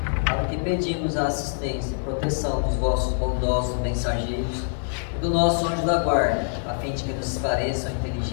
para que pedimos a assistência e proteção dos vossos bondosos mensageiros e do nosso anjo da guarda, a fim de que nos esclareçam a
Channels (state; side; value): silent; right; digital silence